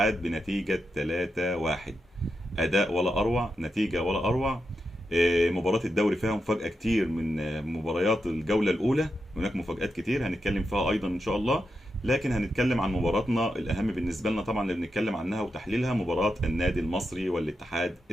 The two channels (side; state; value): both; normal; correlation 0.87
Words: بنتيجة 3-1. أداء ولا أروع، نتيجة ولا أروع. مباراة الدوري فيها مفاجأة كتير من مباريات الجولة الأولى. هناك مفاجآت كتير هنتكلم فيها أيضا إن شاء الله. لكن هنتكلم عن مباراتنا الأهم بالنسبة لنا طبعا اللي بنتكلم عنها وتحليلها، مباراة النادي المصري والاتحاد